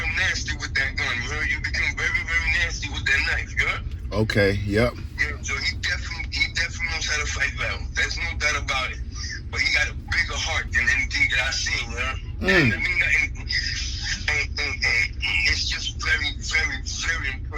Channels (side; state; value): both; identical; correlation 1.00